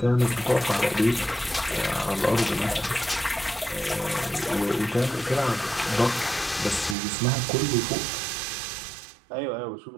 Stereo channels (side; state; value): left; drops out; at 7.0 s